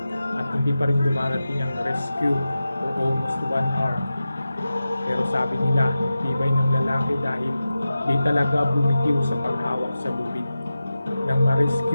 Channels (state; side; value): inverted; both; correlation -0.93